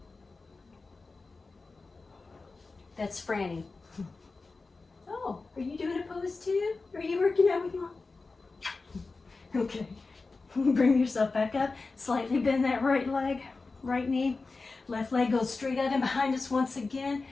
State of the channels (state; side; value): quieter; right; 3.9 dB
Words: That's Franny. Oh, are you doing a pose too? Are you working out with Mom? Okay. Bring yourself back up. Slightly bend that right leg, right knee. Left leg goes straight out and behind us once again.